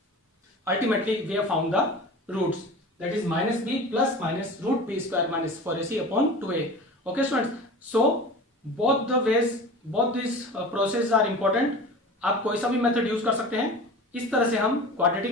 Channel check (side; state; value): both; normal; correlation 0.35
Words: Ultimately we have found the roots, that is minus b plus minus root b square minus 4ac upon 2a. Okay students, so both the ways, both these processes are important. आप कोई सा भी method use कर सकते हैं, इस तरह से हम